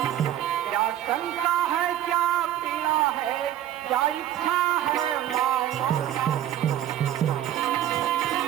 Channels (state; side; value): quieter; left; 11.6 dB